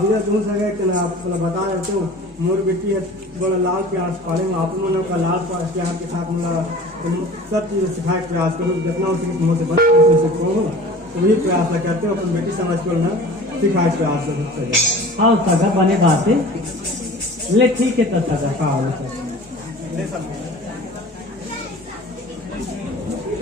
विदा तुम सगे के ना आप बता देते हो मोर बेटी है बड़ा लाल प्यार से पालेंगे आप लोगों का लाल प्यार के साथ मेरा सब चीज़ सिखाए प्रयास करो जितना हो सके मुझसे बच सीखो तो वही प्रयास करते हो अपनी बेटी समझ कर ना सिखाए प्रयास करो। हाँ सगा बने बात है ले ठीक है तो सगा ले सब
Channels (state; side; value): normal; both; correlation 0.42